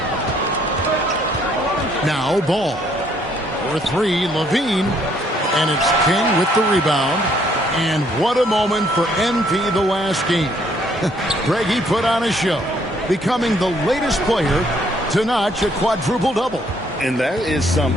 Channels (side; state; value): both; normal; correlation 0.66